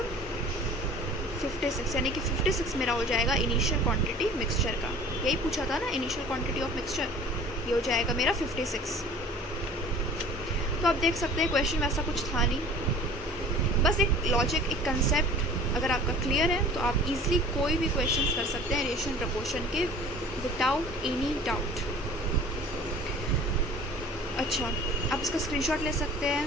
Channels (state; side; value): normal; both; correlation 0.45